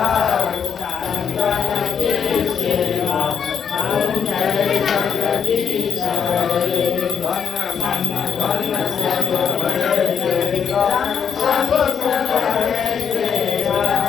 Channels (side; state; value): right; quieter; 7.4 dB